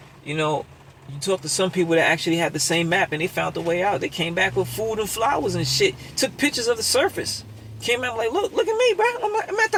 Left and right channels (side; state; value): both; identical; correlation 1.00